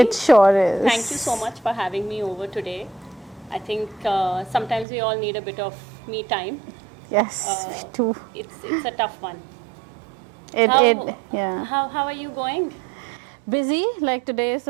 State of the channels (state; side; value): drops out; left; at 4.9 s